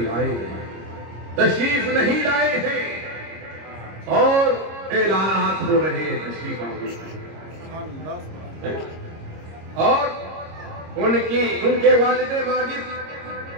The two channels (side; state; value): left; late; 26 ms